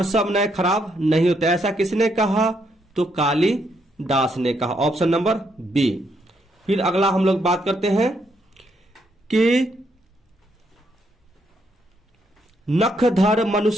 सब नए खराब नहीं होते, ऐसा किसने कहा, तो कालिदास ने कहा। Option number B. फिर अगला हम लोग बात करते हैं कि नखधर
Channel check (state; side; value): normal; both; correlation 0.75